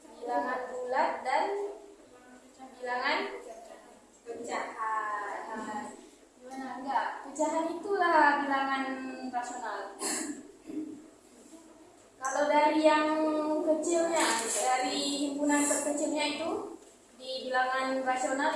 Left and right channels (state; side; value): identical; both; correlation 1.00